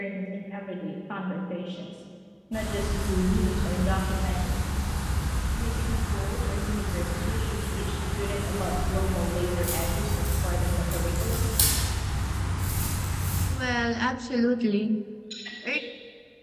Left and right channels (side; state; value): both; identical; correlation 1.00